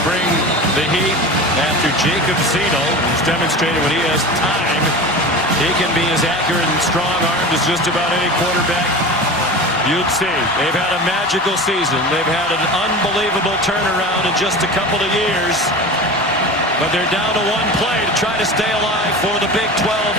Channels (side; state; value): both; normal; correlation 0.31